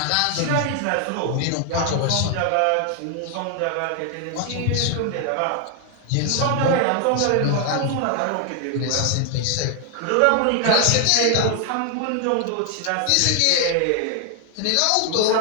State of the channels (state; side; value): different; both; correlation 0.00